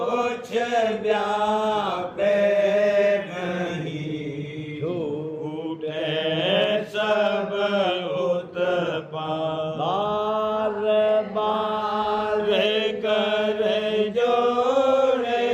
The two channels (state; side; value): identical; both; correlation 1.00